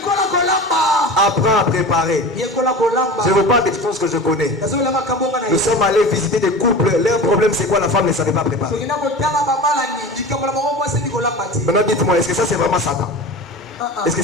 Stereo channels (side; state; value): both; normal; correlation 0.33